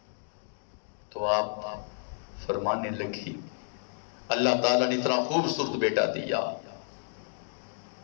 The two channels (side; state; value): right; silent; digital silence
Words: تو آپ فرمانے لگی اللہ تعالیٰ نے اتنا خوبصورت بیٹا دیا,